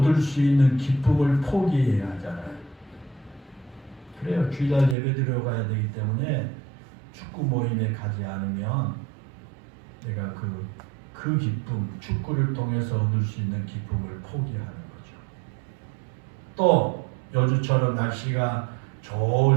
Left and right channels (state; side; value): drops out; left; at 5.0 s